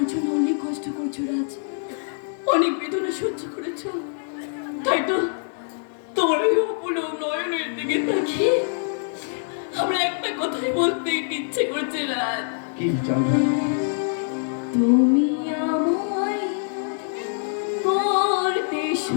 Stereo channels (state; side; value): silent; right; digital silence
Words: জন্য অনেক কষ্ট করছো রাজ, অনেক বেদনা সহ্য করেছো, তাই তো তোমার ওই অপলক নয়নের দিকে তাকিয়ে আমরা একটা কথাই বলতে ইচ্ছে করছে রাজ। কি চন্দ্র? তুমি আমায় করতে